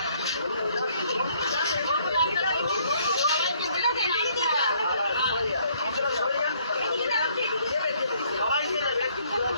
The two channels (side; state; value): both; inverted; correlation -0.65